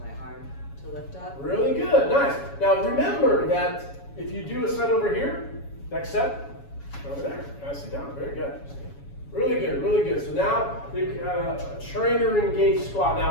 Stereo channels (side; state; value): right; late; 7.1 ms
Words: arm to lift up? Really good, nice. Now remember that if you do a set over here, next set, over there, nicely done, very good. Really good, really good. So now a trainer engaged squat.